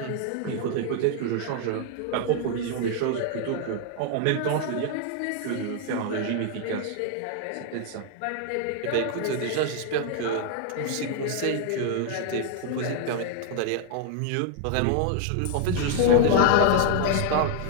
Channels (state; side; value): different; both; correlation 0.00